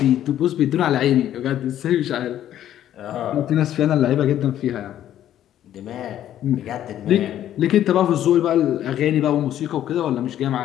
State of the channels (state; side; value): quieter; right; 11.6 dB